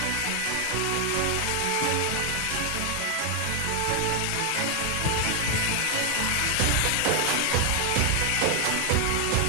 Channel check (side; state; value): both; different; correlation 0.00